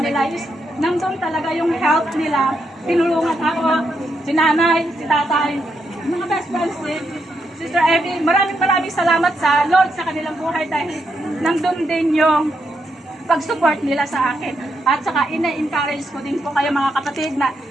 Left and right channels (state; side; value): normal; both; correlation 0.81